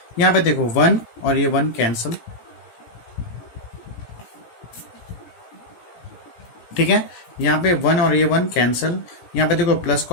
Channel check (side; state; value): right; late; 17 ms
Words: यहाँ पे देखो 1 और ये 1 कैंसल। ठीक है, यहाँ पे 1 और ये 1 कैंसल, यहाँ पे देखो प्लस